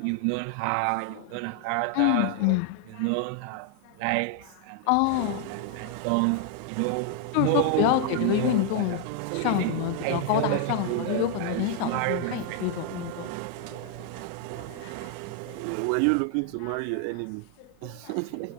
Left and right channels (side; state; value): both; different; correlation 0.00